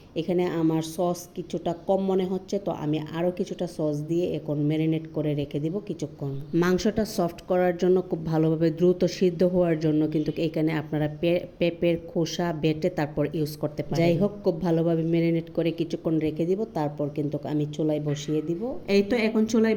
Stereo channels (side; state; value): both; identical; correlation 1.00